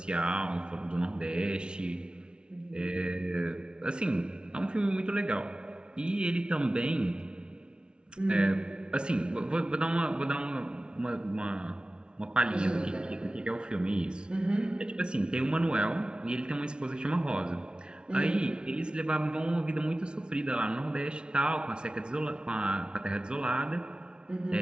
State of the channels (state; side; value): late; left; 0.055 ms